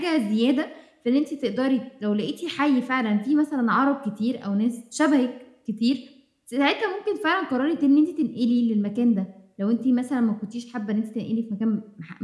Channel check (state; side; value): identical; both; correlation 1.00